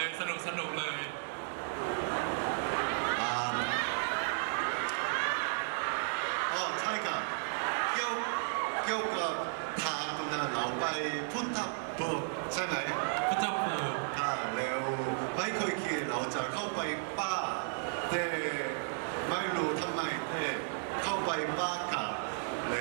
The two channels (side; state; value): left; silent; digital silence